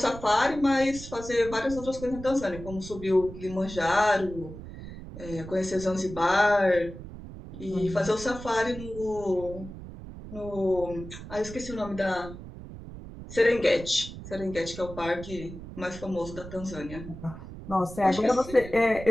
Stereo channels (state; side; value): noise; right; rumble, 12 dB below the sound